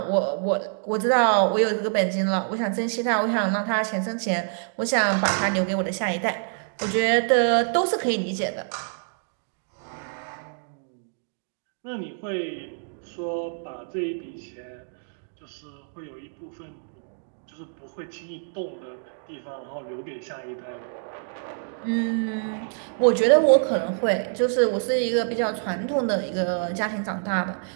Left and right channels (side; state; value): left; silent; digital silence